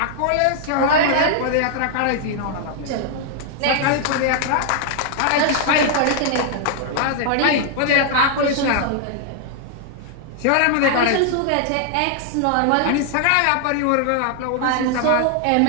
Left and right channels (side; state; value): both; different; correlation 0.00